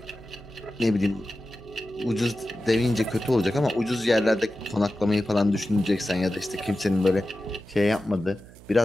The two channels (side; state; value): right; noise; hum, 21 dB below the sound